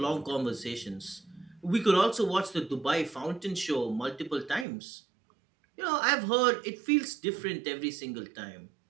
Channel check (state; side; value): drops out; left; at 4.7 s